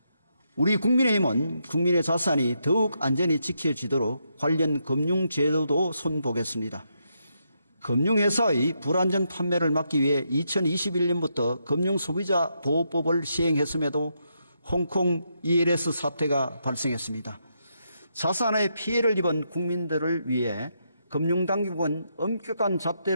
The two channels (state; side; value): inverted; both; correlation -0.80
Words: 우리 국민의힘은 국민의 자산이 더욱 안전히 지켜지도록 관련 금융제도도 손보겠습니다. 금융회사의 불안전 판매를 막기 위해 2021년부터 금융소비자보호법을 시행했음에도 홍콩 ELS 사태가 발생했습니다. 자산에 피해를 입은 국민들을 위해 금융당국은 엄격한